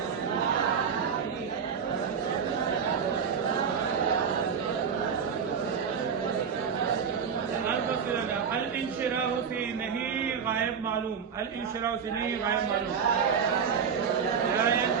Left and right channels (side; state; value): left; quieter; 6.8 dB